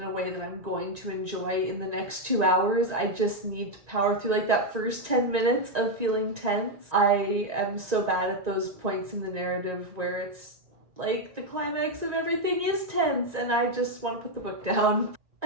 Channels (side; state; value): left; late; 1.9 ms